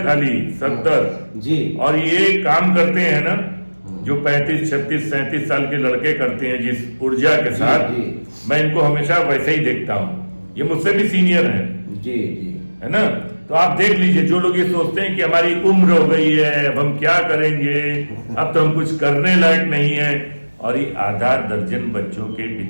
खाली 70, जी। और ये काम करते हैं ना जो 35, 36, 37 साल के लड़के करते हैं जिस ऊर्जा के साथ, जी। मैं इनको हमेशा वैसे ही देखता हूँ। ये मुझसे भी सीनियर हैं, जी जी। है ना? तो आप देख लीजिए, जो लोग ये सोचते हैं कि हमारी उम्र हो गई है, अब हम क्या करेंगे, अब तो हम कुछ करने लायक नहीं है, और ये आधा दर्जन बच्चों के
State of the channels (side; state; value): both; inverted; correlation -1.00